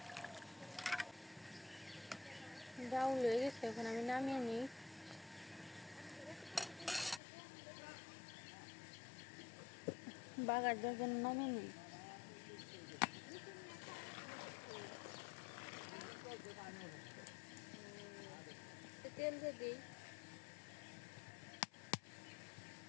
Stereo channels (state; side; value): drops out; right; at 7.2 s